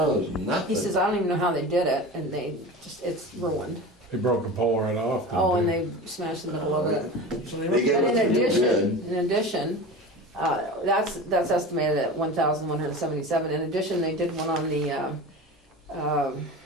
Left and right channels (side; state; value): both; normal; correlation 0.31